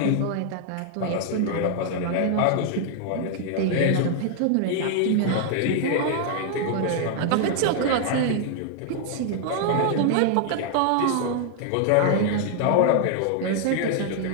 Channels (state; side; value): different; both; correlation 0.00